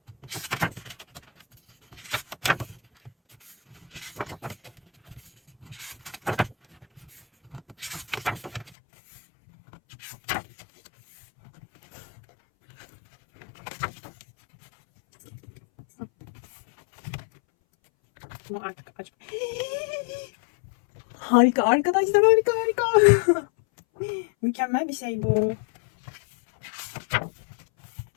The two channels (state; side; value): drops out; right; at 8.7 s